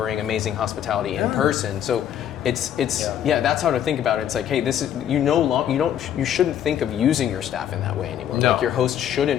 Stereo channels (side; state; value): right; quieter; 10.1 dB